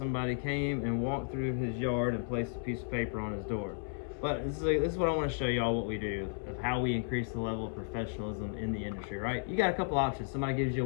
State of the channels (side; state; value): right; silent; 55 dB below the other